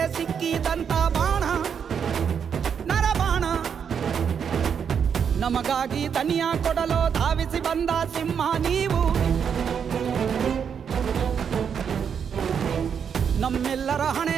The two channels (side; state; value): left; quieter; 7.3 dB